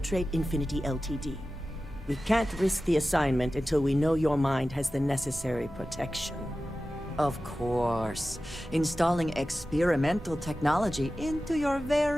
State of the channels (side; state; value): both; normal; correlation 0.94